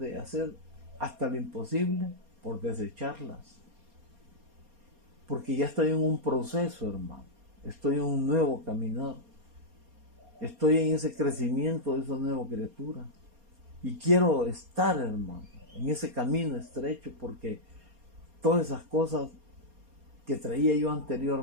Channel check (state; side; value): late; left; 4.3 ms